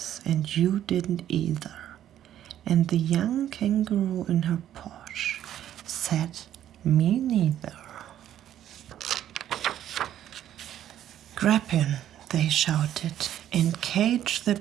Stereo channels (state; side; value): quieter; left; 11.3 dB